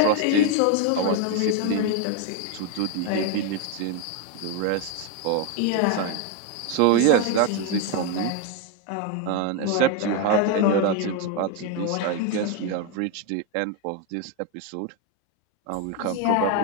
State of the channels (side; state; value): both; different; correlation 0.01